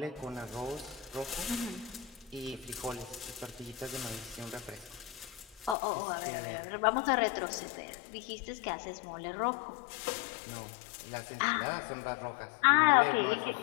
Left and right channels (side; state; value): right; drops out; at 5.8 s